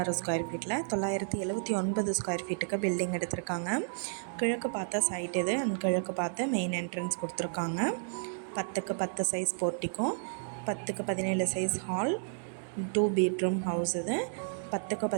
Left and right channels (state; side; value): silent; left; digital silence